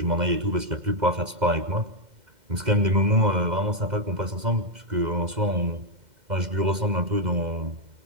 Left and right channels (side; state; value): left; late; 2.1 ms